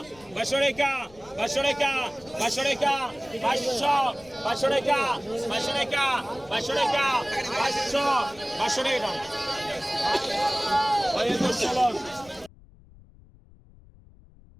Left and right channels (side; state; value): left; noise; rumble, 25 dB below the sound